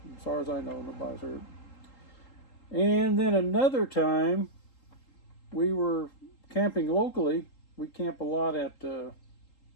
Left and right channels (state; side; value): late; right; 3.8 ms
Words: As far as I know, nobody's hurt. And then another time, we were camping locally. We camp a lot at